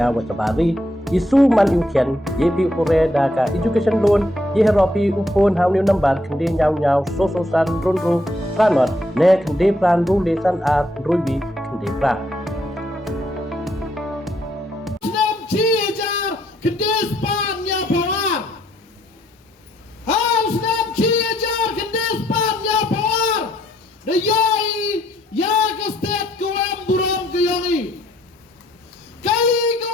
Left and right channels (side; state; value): both; normal; correlation 0.72